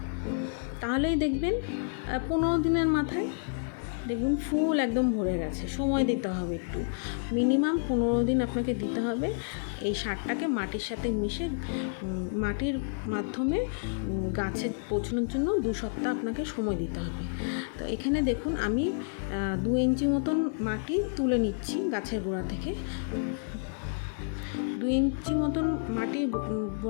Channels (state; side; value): silent; right; 58 dB below the other